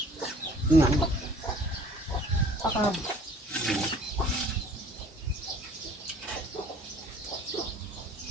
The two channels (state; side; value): normal; both; correlation 0.52